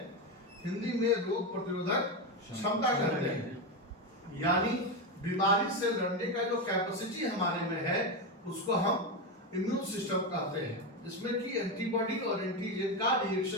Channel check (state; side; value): normal; both; correlation 0.12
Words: हिंदी में रोग प्रतिरोधक क्षमता कहते हैं। यानी बीमारी से लड़ने का जो कैपेसिटी हमारे में है उसको हम इम्यून सिस्टम कहते हैं, जिसमें कि एंटीबॉडी और एंटीजन का